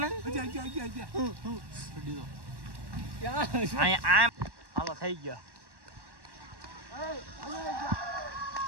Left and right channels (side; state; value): left; late; 1.1 ms